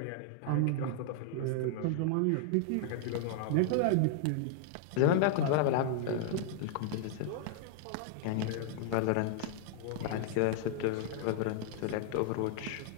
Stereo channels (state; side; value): different; both; correlation 0.00